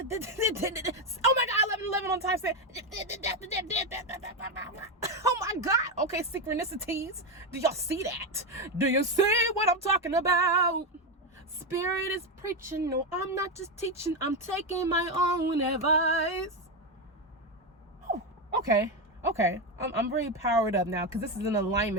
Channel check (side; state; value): both; normal; correlation 0.10